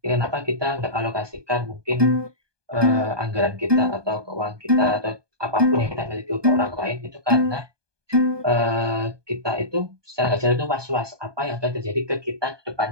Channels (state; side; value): late; left; 1.2 ms